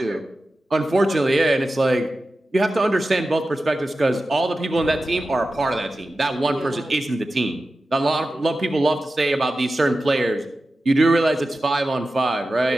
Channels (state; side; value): normal; both; correlation 0.93